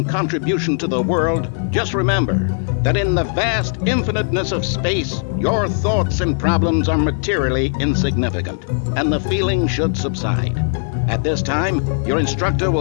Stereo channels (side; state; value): right; silent; 64 dB below the other